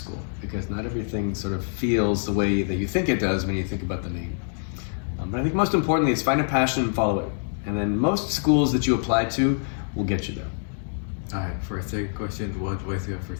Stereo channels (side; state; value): right; silent; 61 dB below the other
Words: because not everything sort of feels the way that you think it does when you think about the name. But I think most importantly is find a passion and follow it. And then most schools that you apply to will get you there. Alright, for our second question, what advice do you have